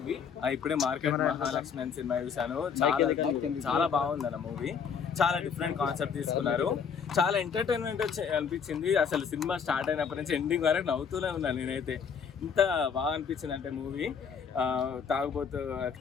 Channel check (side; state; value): right; quieter; 6.6 dB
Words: ఇప్పుడే మార్కెట్ మహాలక్ష్మి అని సినిమా చూసాను. చాలా బాగుంది అన్న మూవీ. చాలా డిఫరెంట్ కాన్సెప్ట్ తీసుకున్నారు. చాలా ఎంటర్టైన్మెంట్ అనిపించింది. అసలు సినిమా స్టార్ట్ అయినప్పటి నుంచి ఎండింగ్ వరకు నవ్వుతూనే ఉన్నాను నేనైతే. ఇంత బాగా అనిపించింది అంటే మూవీ. తాగుబోతు